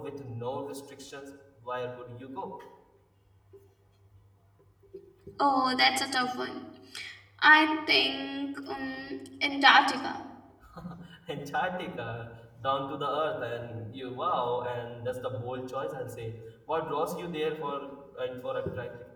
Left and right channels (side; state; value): both; identical; correlation 1.00